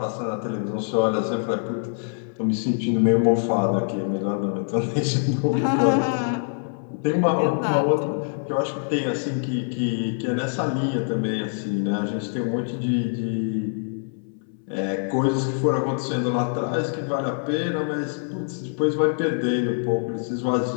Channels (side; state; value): right; silent; 62 dB below the other